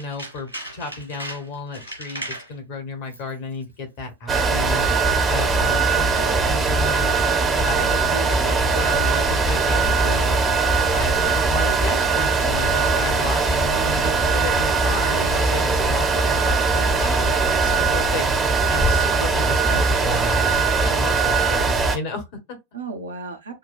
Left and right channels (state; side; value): quieter; left; 3.4 dB